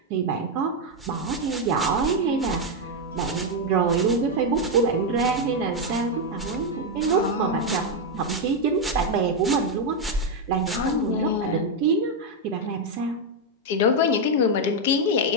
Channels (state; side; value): normal; both; correlation 0.03